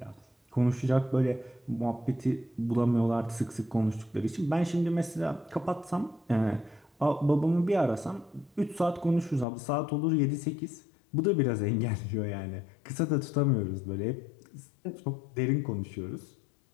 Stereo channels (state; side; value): drops out; right; at 9.5 s